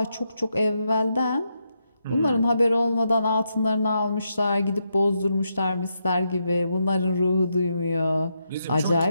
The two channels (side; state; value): both; inverted; correlation -0.82